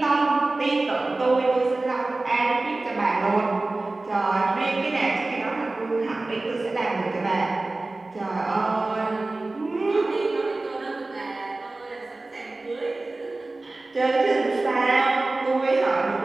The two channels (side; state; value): left; quieter; 3.1 dB